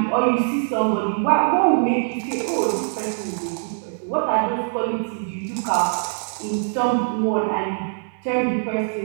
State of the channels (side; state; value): left; silent; digital silence